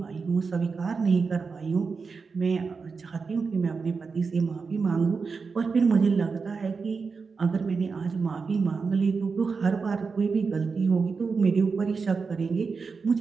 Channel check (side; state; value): left; quieter; 4.9 dB